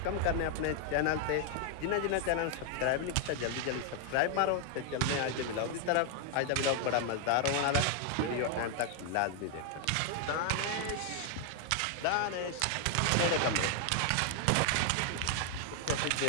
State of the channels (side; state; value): both; different; correlation 0.00